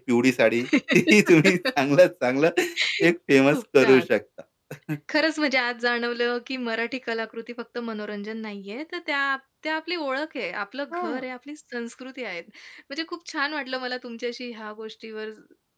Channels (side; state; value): both; identical; correlation 1.00